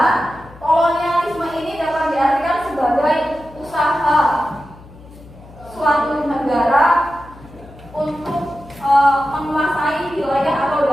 kolonialisme ini dapat diartikan sebagai usaha suatu negara untuk menguasai wilayah atau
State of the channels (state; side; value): noise; left; hum, 20 dB below the sound